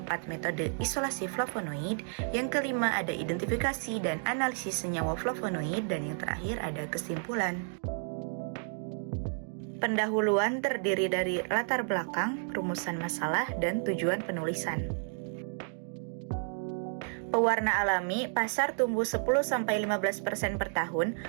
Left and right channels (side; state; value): left; silent; 57 dB below the other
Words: metode isolasi flavonoid, yang kelima ada identifikasi dan analisis senyawa flavonoid, dan yang terakhir ada kesimpulan. Pendahuluan terdiri dari latar belakang, rumusan masalah, dan tujuan penulisan. Pewarna alami, pasar tumbuh 10-15% per tahun.